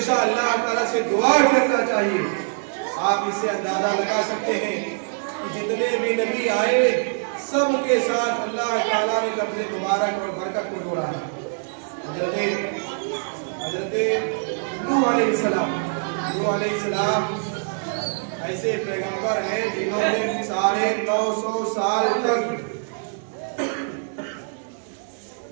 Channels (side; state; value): left; silent; digital silence